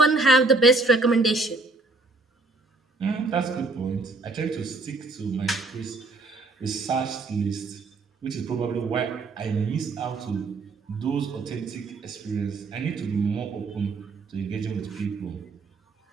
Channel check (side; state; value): left; quieter; 3.5 dB